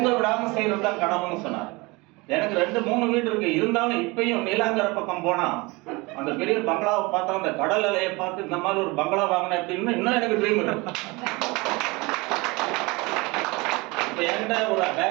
விடாம செய்யறதுதான் கனவுன்னு சொன்னார். எனக்கு 2-3 வீடு இருக்கு. இருந்தாலும் இப்பயும் நீலாங்கர பக்கம் போனா அந்த பெரிய பங்களாவை பார்த்தா, அந்த கடல் அலையை பார்த்து இந்த மாதிரி ஒரு பங்களா வாங்கினேன் அப்படின்னு இன்னும் எனக்கு ட்ரீம் இருக்கு. இப்ப என்கிட்ட ஒரு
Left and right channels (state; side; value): quieter; left; 24.6 dB